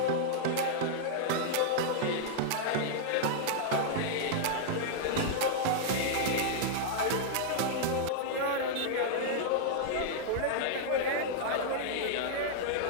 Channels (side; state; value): both; different; correlation -0.01